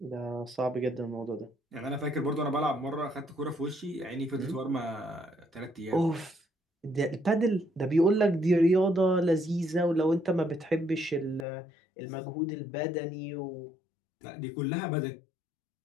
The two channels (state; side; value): drops out; right; at 11.5 s